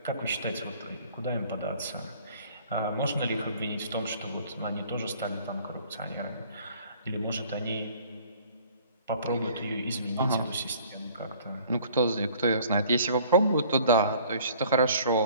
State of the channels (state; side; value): inverted; both; correlation -0.54